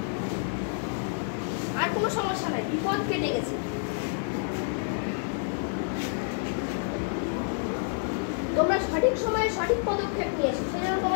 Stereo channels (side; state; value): right; silent; digital silence